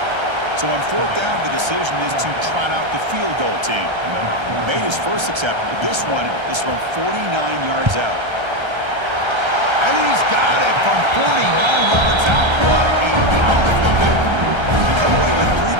So on fourth down, the decision is to trot out the field goal team. Made his first attempt. This one is from 49 yards out. And he's got it from 49 yards out. What a powerful kick. They come away with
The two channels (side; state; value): left; late; 1.3 ms